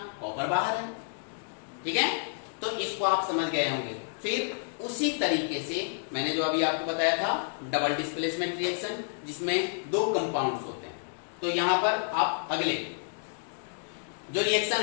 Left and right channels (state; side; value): silent; right; digital silence